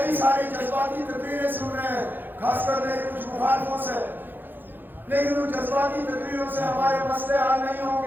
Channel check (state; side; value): late; left; 0.092 ms